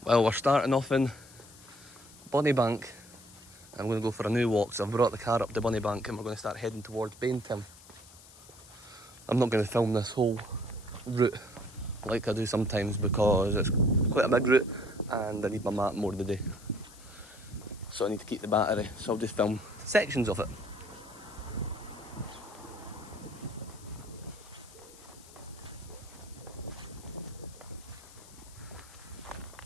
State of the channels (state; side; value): noise; left; hiss, 21 dB below the sound